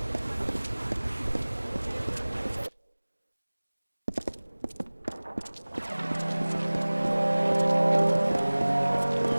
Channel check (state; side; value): inverted; both; correlation -1.00